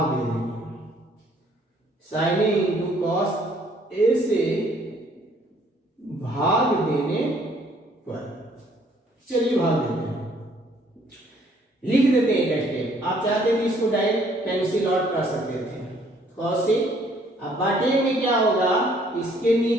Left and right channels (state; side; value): normal; both; correlation 0.62